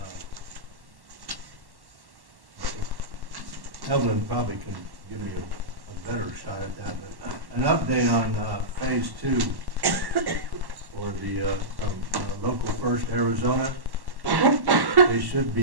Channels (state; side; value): late; left; 1.1 ms